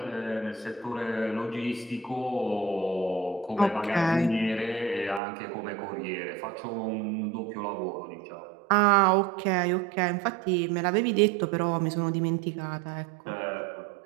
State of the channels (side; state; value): left; drops out; at 5.2 s